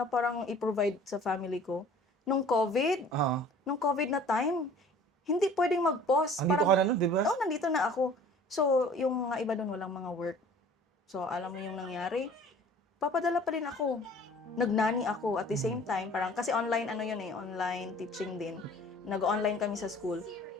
parang i-provide sa family ko. Nung COVID na time, hindi pwedeng mag-pause. Andito ka na nun, di ba? Oo, nandito na ako. So, yung mga iba doon, walang mga work. So, alam mo yung nangyari, papadala pa rin ako. Nagnani ako at the same time, parang, kasi online, online teaching din. Nag-online kami sa school.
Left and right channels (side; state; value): both; normal; correlation 0.49